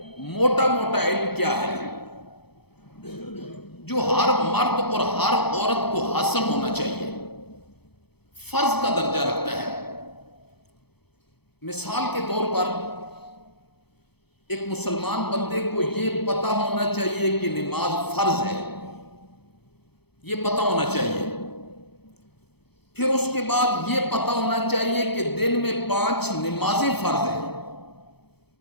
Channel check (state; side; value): late; right; 0.98 ms